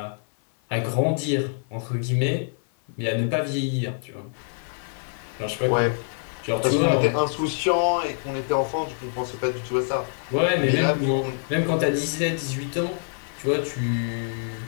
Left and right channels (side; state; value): right; silent; 56 dB below the other